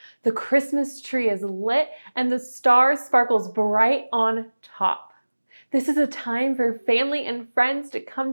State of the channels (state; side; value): inverted; both; correlation -1.00